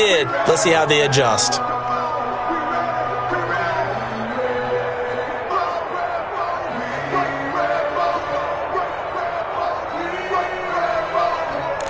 Let's see how they adjust.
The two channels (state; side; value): identical; both; correlation 1.00